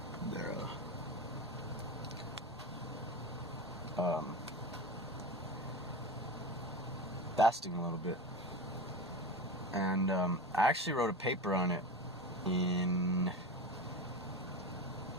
fasting a little bit. And I actually wrote a paper on it in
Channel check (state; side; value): normal; both; correlation 0.26